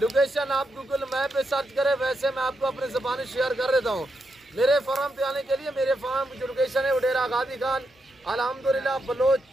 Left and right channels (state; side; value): normal; both; correlation 0.83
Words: आप गूगल मैप पे सर्च करें, वैसे मैं आपको अपनी ज़बानी शेयर कर देता हूँ। मेरे फार्म पे आने के लिए मेरे फार्म की जो लोकेशन है वो डेरा गादी खान अल्हम्दुलिल्लाह बलोच